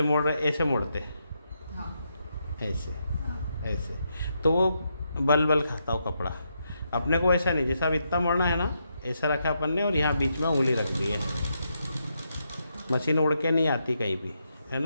मोड़ रहे, ऐसे मोड़ते, हाँ ऐसे ऐसे, तो वो बल बल खाता हो कपड़ा। अपने को ऐसा नहीं, जैसा अब इतना मोड़ना है ना, ऐसा रखा अपन ने और यहाँ बीच में उंगली रख दी है। मशीन उड़ के नहीं आती कहीं भी, है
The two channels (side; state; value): both; inverted; correlation -0.81